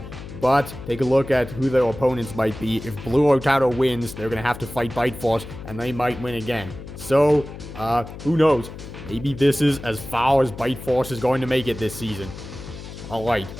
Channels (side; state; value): left; noise; hum, 13 dB below the sound